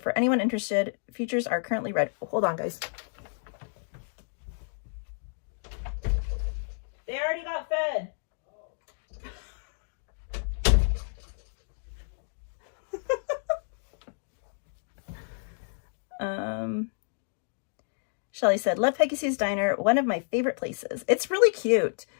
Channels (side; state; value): right; silent; digital silence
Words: for anyone interested, features are currently read. Oh, hold on, guys. They already got fed. Shelly said, love Peggy Sue's Diner, one of my favorite places. It's really cute.